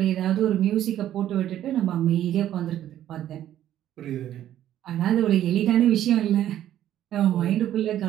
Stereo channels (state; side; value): quieter; left; 11.9 dB